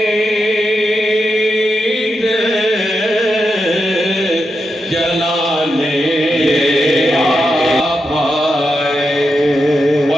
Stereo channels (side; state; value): both; normal; correlation 0.86